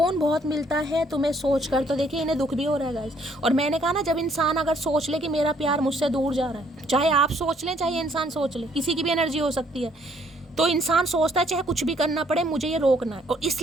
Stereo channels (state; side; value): normal; both; correlation 0.65